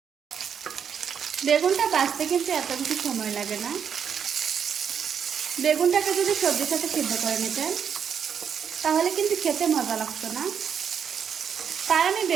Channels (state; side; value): quieter; left; 7.6 dB